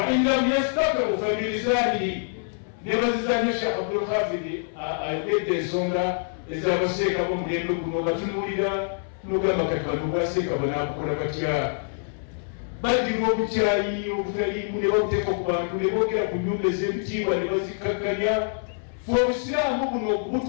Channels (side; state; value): right; silent; 61 dB below the other